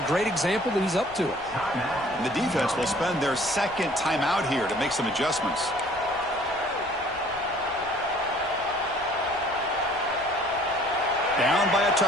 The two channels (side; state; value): left; noise; rumble, 24 dB below the sound